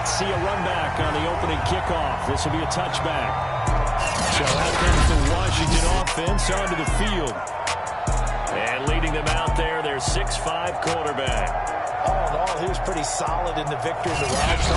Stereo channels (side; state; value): both; identical; correlation 1.00